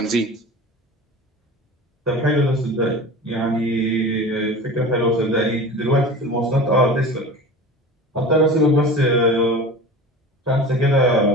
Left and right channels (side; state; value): both; normal; correlation 0.35